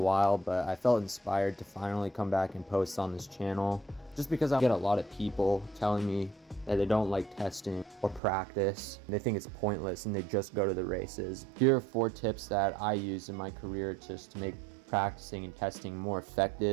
but I felt inspired to finally come back and post on this channel just because I get a lot of people telling me that they don't like testing or practice. They think it's pointless and they just go to the races. Here are 4 tips that I use in my career just to make practicing and testing more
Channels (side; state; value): left; drops out; at 8.2 s